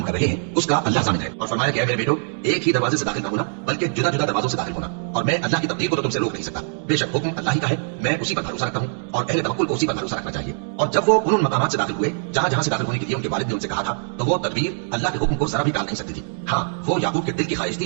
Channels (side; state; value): left; silent; 64 dB below the other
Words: कर रहे हैं उसका अल्लाह ज़ामिन है, और फरमाया कि मेरे बेटो एक ही दरवाजे से दाखिल न होना बल्कि जुदा जुदा दरवाजों से दाखिल होना, और मैं अल्लाह की तकदीर को तो तुमसे रोक नहीं सकता। बेशक हुक्म अल्लाह ही का है, मैं उसी पर भरोसा रखता हूँ और अहले तवक्कुल को उसी पर भरोसा रखना चाहिए। और जब वो उन मकामात से दाखिल हुए जहाँ जहाँ से दाखिल होने के लिए उनके वालिद ने उनसे कहा था, तो वो तदबीर अल्लाह के हुक्म को जरा भी टाल नहीं सकती थी। हाँ, वो याकूब के दिल की ख्वाहिश थी